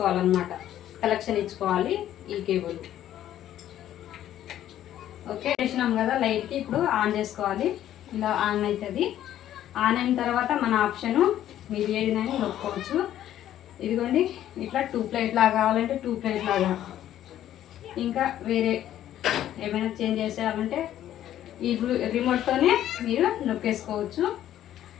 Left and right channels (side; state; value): right; quieter; 12.0 dB